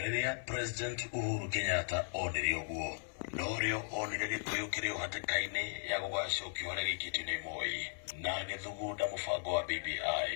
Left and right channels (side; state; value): right; silent; digital silence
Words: President Uhuru Kenyatta onire uguo norio onire Gikuyu kiri hatikaini ya gugacukio haria gikitio ni Moi na agithugunda mubango wa